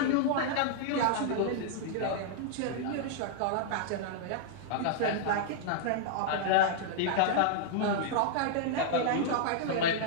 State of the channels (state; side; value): different; both; correlation -0.01